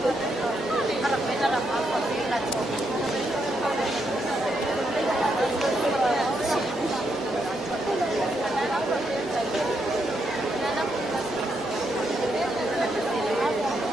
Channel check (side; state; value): both; normal; correlation 0.79